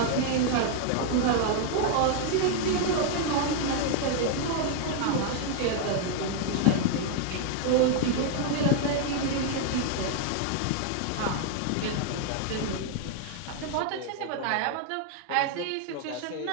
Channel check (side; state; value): both; different; correlation 0.00